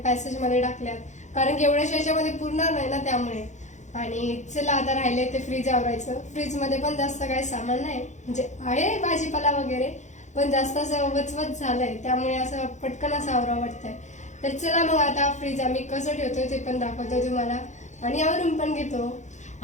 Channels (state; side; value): late; right; 0.34 ms